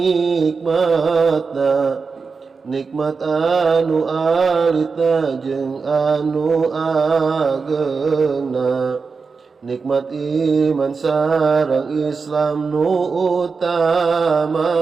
nikmat anu alita jeung anu ageuna, nikmat iman sareng Islam nu utamana.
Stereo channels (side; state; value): left; quieter; 4.9 dB